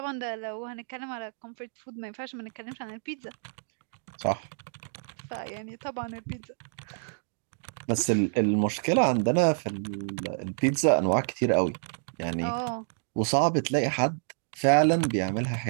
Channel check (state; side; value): silent; left; digital silence